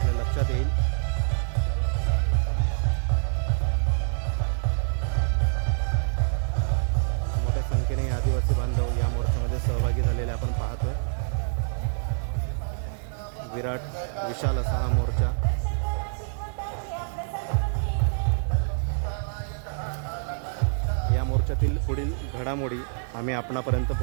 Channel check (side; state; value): left; silent; digital silence